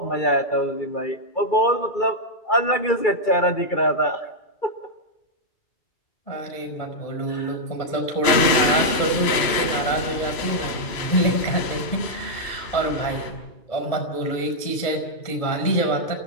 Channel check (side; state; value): right; late; 2.9 ms